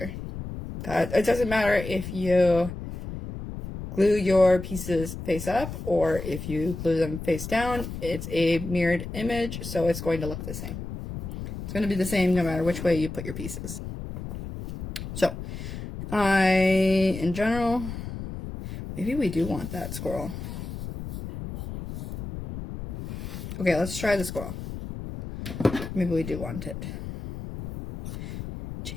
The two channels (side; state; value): left; noise; rumble, 8 dB below the sound